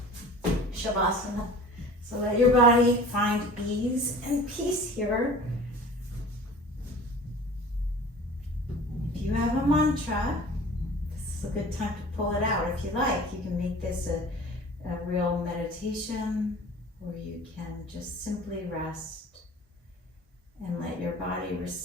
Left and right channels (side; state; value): both; normal; correlation 0.42